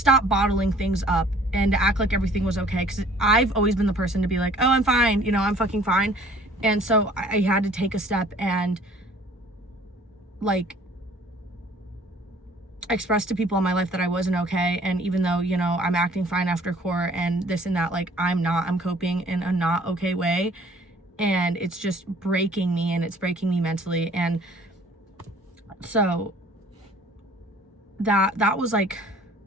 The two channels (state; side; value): normal; both; correlation 0.54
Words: bottling things up and to act like everything was okay. Because I've always been the person to be like, oh, I'm fine, you know, I'm fucking fine. And so I had to take a step and, like, express to people in my life that I wasn't okay. And even though, you know, I'm acting fine after court and this and that, like, I'm coping in a not okay way. And it's just breaking me, and it's breaking me mentally. And so that was like